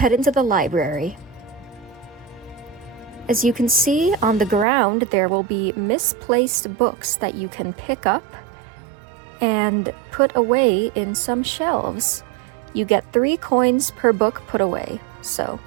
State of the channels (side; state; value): left; drops out; at 4.7 s